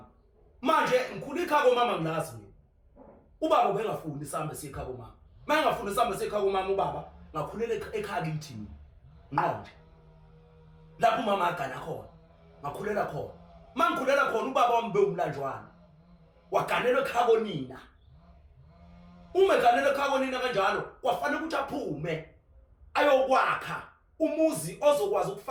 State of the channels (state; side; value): identical; both; correlation 1.00